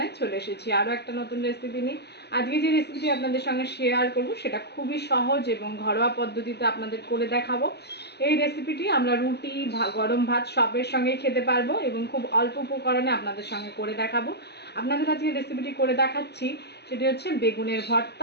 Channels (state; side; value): late; right; 0.48 ms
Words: চলে এসেছি আরও একটা নতুন রেসিপি নিয়ে। আজকে যে রেসিপিটি আপনাদের সঙ্গে শেয়ার করব সেটা খুবই সহজ এবং ঘরোয়া পদ্ধতিতে আপনাদের করে দেখাবো। এই রেসিপিটি আমরা রুটি, গরম ভাত সবের সঙ্গে খেতে পারবো এবং খুব অল্প উপকরণে আপনাদের সঙ্গে করে দেখাবো। আপনাদের কাছে রেসিপিটি করে দেখাচ্ছি সেটি হচ্ছে বেগুনের